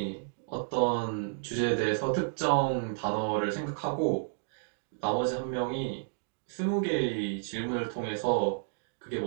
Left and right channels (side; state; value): left; silent; digital silence